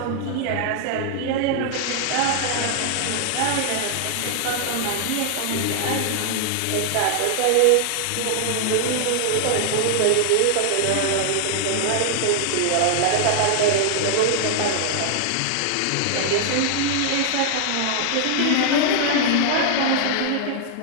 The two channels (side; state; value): both; different; correlation -0.01